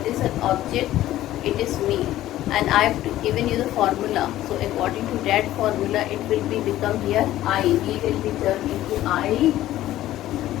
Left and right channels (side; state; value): right; quieter; 14.2 dB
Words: is an object? It is me, and I have given you the formula. So according to that formula, it will be become here I. We will be turned into I.